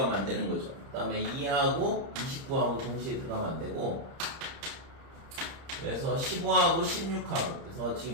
안 되는 거죠. 그 다음에 2하고 29하고 동시에 들어가면 안 되고, 그래서 15하고 16하고, 그래서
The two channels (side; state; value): left; late; 30 ms